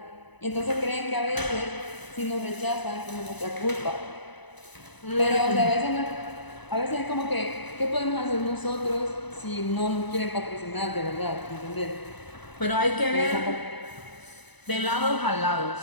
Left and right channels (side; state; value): right; late; 1.0 ms